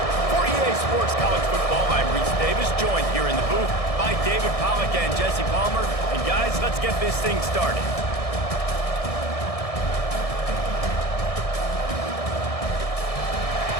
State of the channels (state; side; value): late; right; 1.6 ms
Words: For EA Sports College Football, I'm Reese Davis, joined here in the booth by David Pollack and Jesse Palmer. And guys, let's get this thing started.